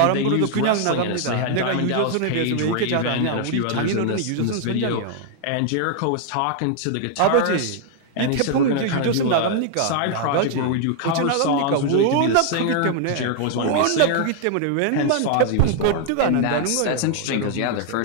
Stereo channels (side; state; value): both; different; correlation 0.00